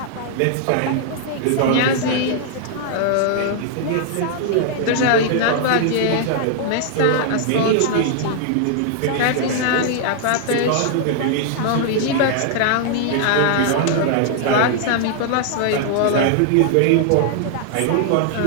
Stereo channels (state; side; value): different; both; correlation 0.00